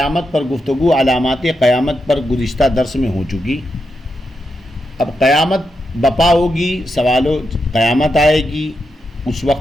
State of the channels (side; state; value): both; normal; correlation 0.85